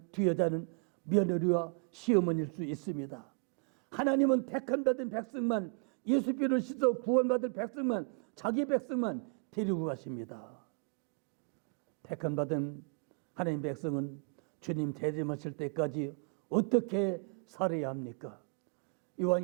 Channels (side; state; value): left; quieter; 39.8 dB